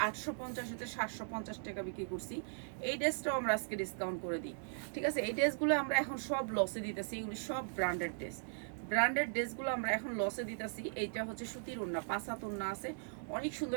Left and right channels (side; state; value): left; silent; digital silence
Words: 850 750 টাকা বিক্রি করছি। এই ড্রেসটাও আমরা আজকে ডিসকাউন্ট করে দিই, ঠিক আছে? এই ড্রেসগুলো আমরা এখন সব লসে দিতেছি, এগুলি সব ব্র্যান্ডেড ড্রেসগুলো আমরা এখন লসে দিতেছি। এইটা হচ্ছে সুতির ওন্না, 5 হাত ওন্না আছে, অনেক